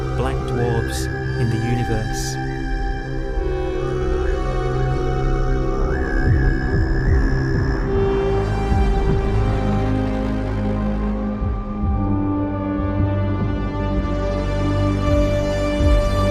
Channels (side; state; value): both; identical; correlation 1.00